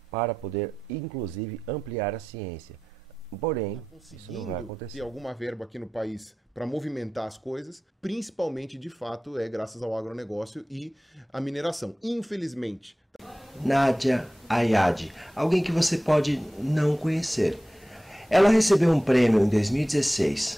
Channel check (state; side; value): normal; both; correlation 0.94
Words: para poder, inclusive, ampliar a ciência. Porém, isso não vai acontecer. Ter alguma verba aqui no país para movimentar as coisas, principalmente, de fato, é graças ao agronegócio e à mineração. Infelizmente. Nadia Ayad, alguém que você pode não conhecer. Ela recebeu um prêmio em